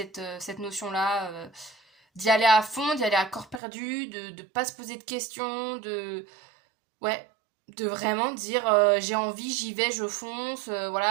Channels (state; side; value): drops out; left; at 3.6 s